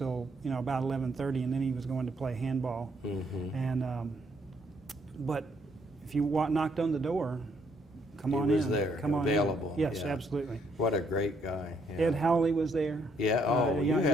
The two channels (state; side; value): normal; both; correlation 0.71